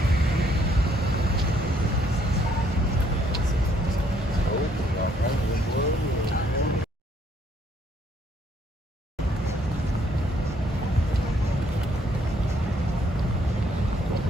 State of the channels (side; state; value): both; normal; correlation 0.68